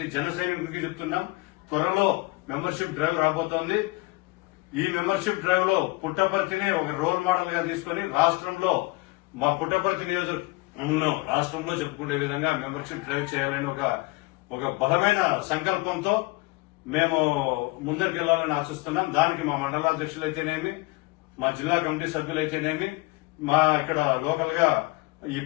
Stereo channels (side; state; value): right; quieter; 23.2 dB